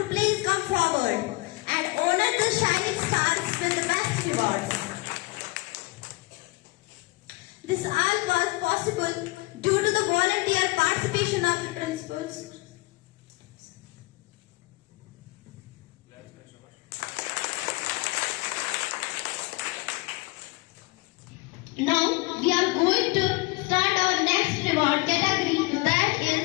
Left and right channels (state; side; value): quieter; right; 24.6 dB